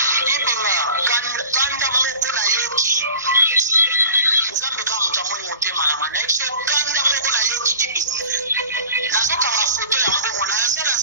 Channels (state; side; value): inverted; both; correlation -0.40